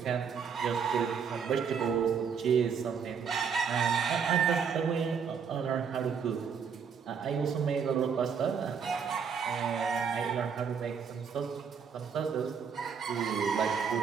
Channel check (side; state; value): left; quieter; 6.6 dB